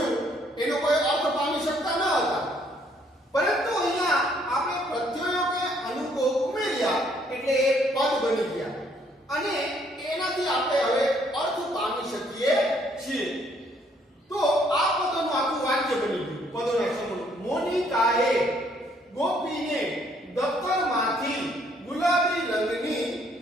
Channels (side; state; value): both; normal; correlation 0.66